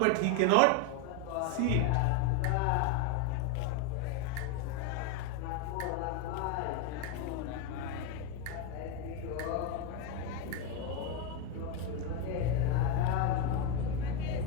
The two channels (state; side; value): different; both; correlation 0.02